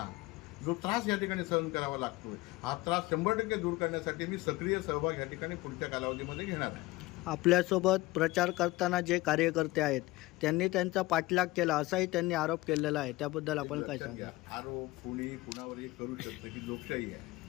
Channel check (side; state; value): right; quieter; 20.1 dB